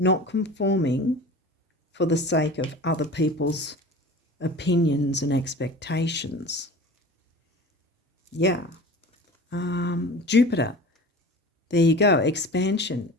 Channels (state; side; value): normal; both; correlation 0.38